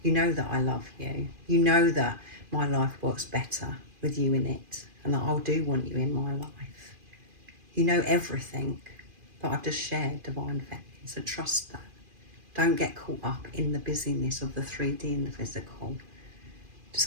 You know that I love you. You know that my life works better with you in it, and that I do want you in my life. You know everything that I've just shared, Divine Feminine. So trust that. Don't get caught up in the busyness of the 3D and the physical.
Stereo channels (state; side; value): late; left; 2.4 ms